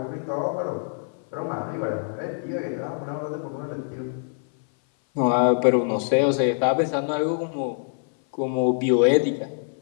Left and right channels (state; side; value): silent; right; 59 dB below the other